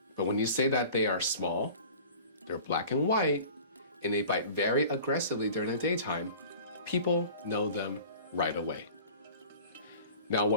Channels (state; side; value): inverted; both; correlation -0.43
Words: But when you say that they are small, they're black and white, and they bite very aggressively during the daytime, people know them right away. Now,